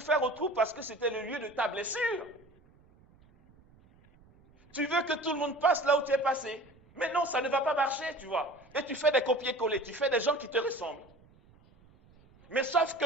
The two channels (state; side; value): noise; right; rumble, 28 dB below the sound